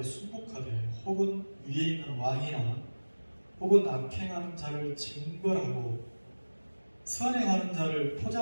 혹은 위에 있는 왕이나 혹은 악행하는 자를 징벌하고 선행하는 자를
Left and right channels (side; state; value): both; inverted; correlation -1.00